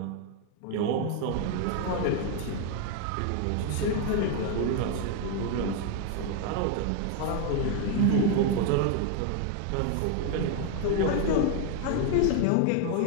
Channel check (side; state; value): both; different; correlation 0.01